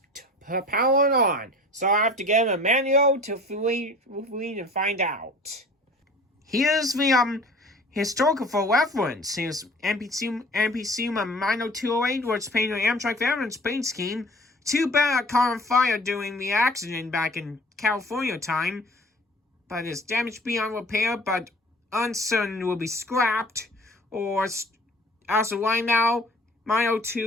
power it on. So I have to get a manual to Fleet and find out. Here's the historical for reference. Here's NPCU 90208, where it's painted Amtrak Veterans paint scheme. Too bad it caught on fire during the accident back in California time. But it's damaged beyond repair, but uncertain will be scrapped. Or also right now,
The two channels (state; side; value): normal; both; correlation 0.46